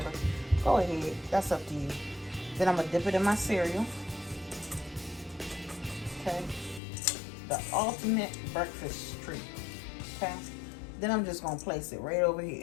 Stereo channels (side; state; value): right; drops out; at 6.8 s